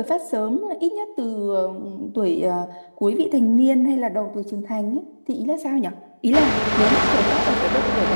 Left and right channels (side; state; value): both; inverted; correlation -1.00